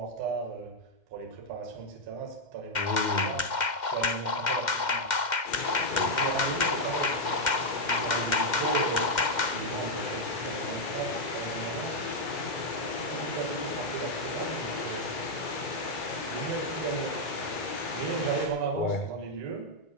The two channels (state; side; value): late; right; 2.1 ms